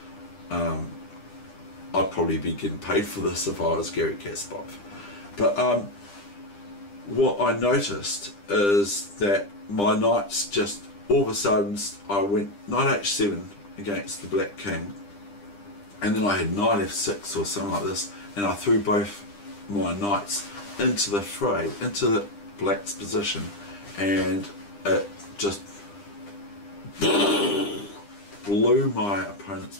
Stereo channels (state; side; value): late; right; 9.9 ms